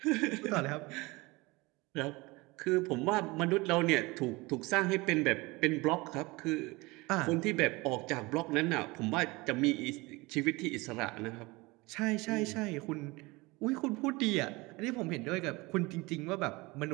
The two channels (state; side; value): quieter; left; 23.4 dB